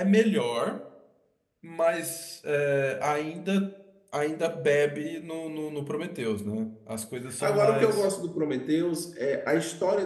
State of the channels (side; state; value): both; identical; correlation 1.00